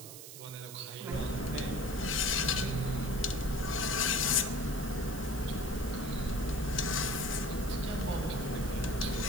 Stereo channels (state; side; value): noise; right; hiss, 12 dB below the sound